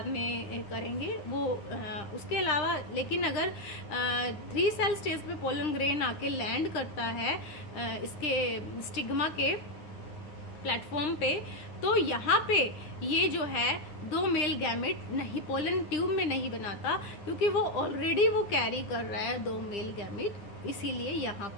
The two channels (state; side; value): late; right; 9.9 ms